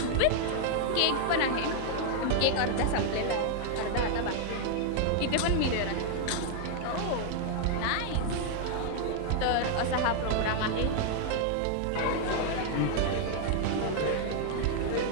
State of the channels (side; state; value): both; different; correlation 0.00